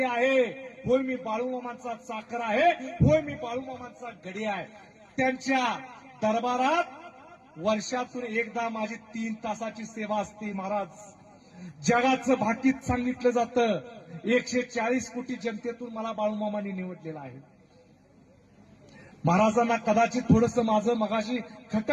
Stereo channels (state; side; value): identical; both; correlation 1.00